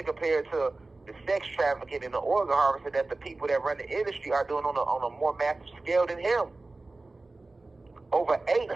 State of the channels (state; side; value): quieter; left; 3.2 dB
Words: compared to the sex trafficking and the organ harvesting that the people that run the industry are doing on a more massive scale than him. Over